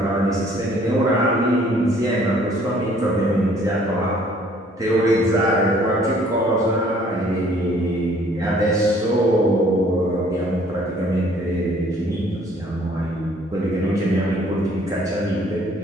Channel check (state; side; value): normal; both; correlation 0.59